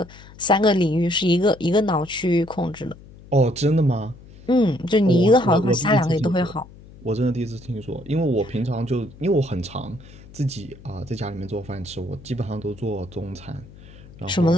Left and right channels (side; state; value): left; noise; hum, 20 dB below the sound